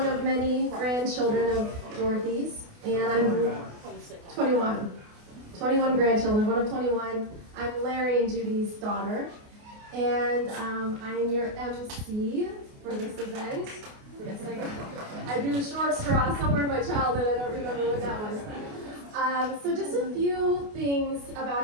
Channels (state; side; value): late; left; 28 ms